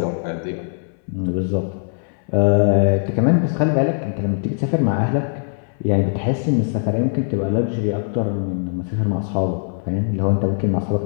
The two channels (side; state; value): right; silent; 65 dB below the other